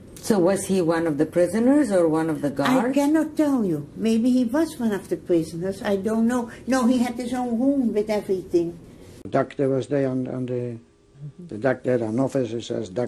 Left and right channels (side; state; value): both; identical; correlation 1.00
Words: So was he one of the prisoners or one of the I guards? cannot tell you. Maybe he was one of the prisoners, I don't know. No, he had his own room with everything. The doctor was there, and the doctor had an officer who says,